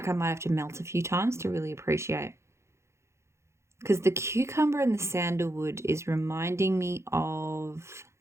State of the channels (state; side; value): late; left; 0.13 ms